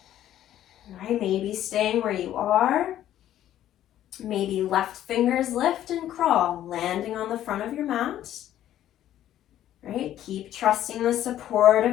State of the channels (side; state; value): right; quieter; 12.1 dB